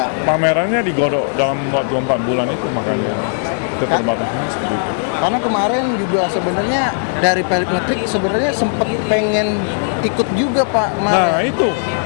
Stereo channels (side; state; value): right; silent; 59 dB below the other